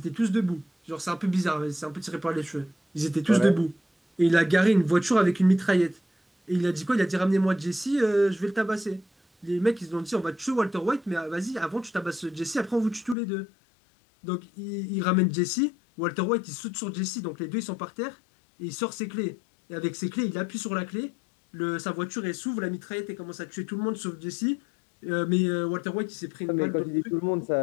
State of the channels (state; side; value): drops out; right; at 13.2 s